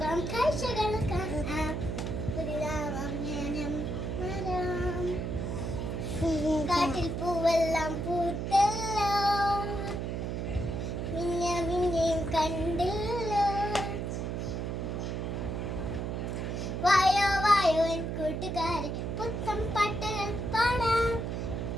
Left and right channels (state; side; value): noise; right; hum, 3 dB below the sound